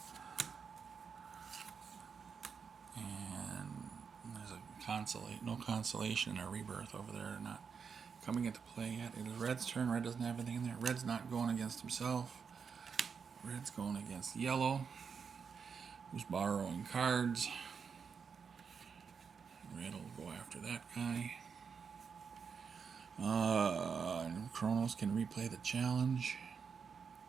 And there's a no consolation or rebirth over there. Not coming into play yet. It is Red's turn. Red doesn't have anything in there. Red's not going against himself. Red's going against Yellow, who's borrowing cards. Red will go after that guy. Chronos can replay the challenge.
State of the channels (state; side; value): quieter; left; 6.1 dB